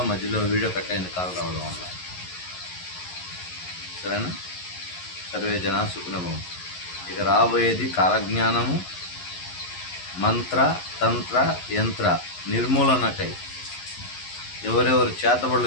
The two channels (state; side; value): late; right; 11 ms